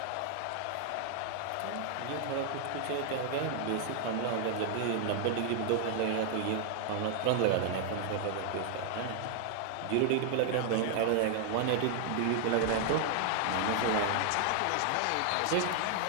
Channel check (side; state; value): both; different; correlation 0.00